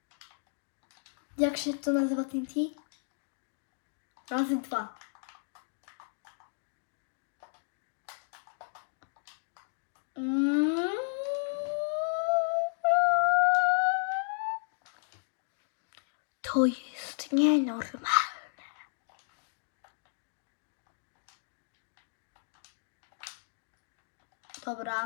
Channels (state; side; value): silent; right; digital silence